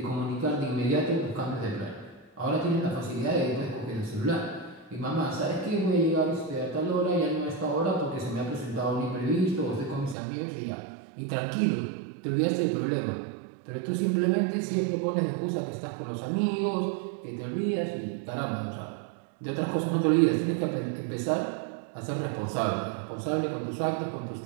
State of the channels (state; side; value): drops out; left; at 10.2 s